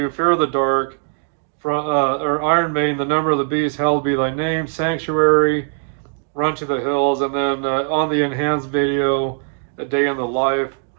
Fear of the Dark, or Iron Maiden, The Number of the Beast, Hallowed Be Thy Name, Sanctuary, Run to the Hills, and then on the enhanced video, A Day in the Life.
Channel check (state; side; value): silent; left; 56 dB below the other